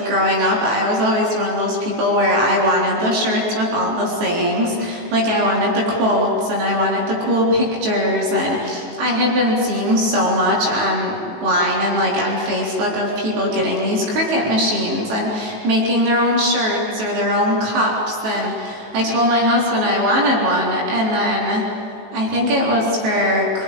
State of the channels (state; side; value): late; left; 19 ms